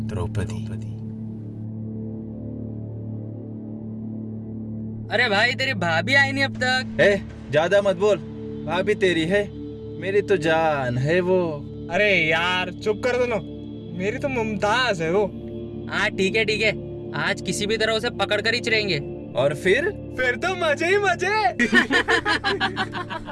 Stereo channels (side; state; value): both; identical; correlation 1.00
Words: द्रौपदी। अरे भाई तेरी भाभी आई नहीं अब तक। ज्यादा मत बोल, भाभी तेरी है, मेरी तो जान है वो। अरे यार चुप कर दो ना, मेरी तो मुमताज है वो। हाँ ठीक है, आज किसी भी तरह उसे पकड़ कर ही चलेंगे। और फिर तो मजे ही मजे।